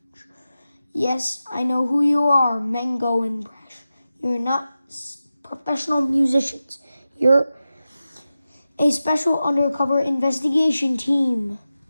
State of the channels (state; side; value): inverted; both; correlation -0.93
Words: Yes, I know who you are, Mango and Brash. You're not professional musicians. You're a special undercover investigation team.